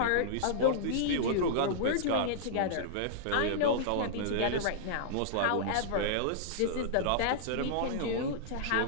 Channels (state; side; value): different; both; correlation -0.02